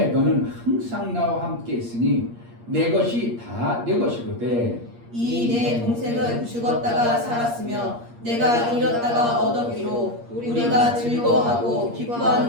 너는 항상 나와 함께 있으니 내 것이 다 내 것이로되 이 내 동생은 죽었다가 살았으며 내가 잃었다가 얻었기로 우리가 즐거워하고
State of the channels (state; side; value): late; left; 8.5 ms